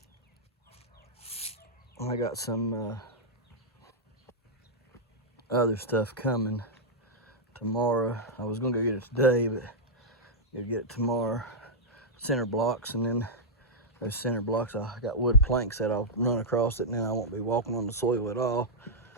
some other stuff coming tomorrow. I was gonna go get it today, but gonna get it tomorrow. Center blocks, and then those center blocks, I got wood planks that I'll run across it, and then I won't be walking on the soil at all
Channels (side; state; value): both; normal; correlation -0.07